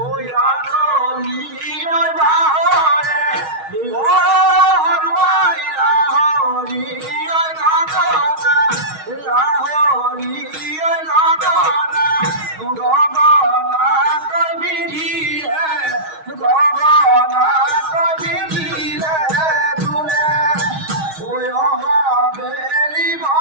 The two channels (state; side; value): late; left; 6.3 ms